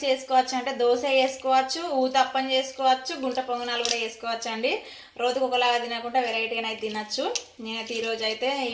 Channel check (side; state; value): both; identical; correlation 1.00